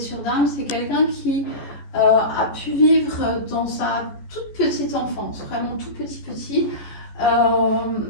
d'âme, c'est quelqu'un qui a pu vivre dans sa toute petite enfance, vraiment tout petit,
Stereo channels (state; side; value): late; right; 14 ms